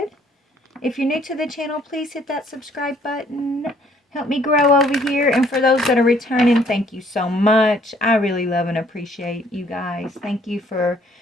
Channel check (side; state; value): both; normal; correlation 0.62